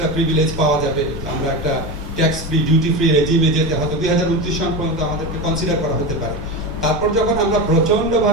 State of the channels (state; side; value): noise; left; rumble, 11 dB below the sound